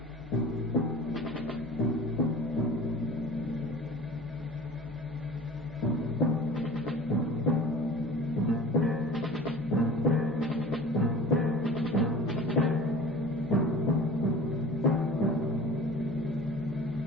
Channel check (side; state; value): both; normal; correlation 0.40